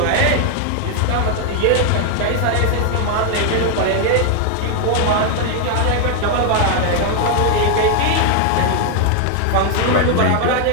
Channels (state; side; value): different; both; correlation 0.00